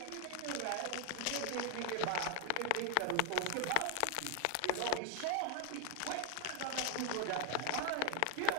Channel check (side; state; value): both; different; correlation 0.01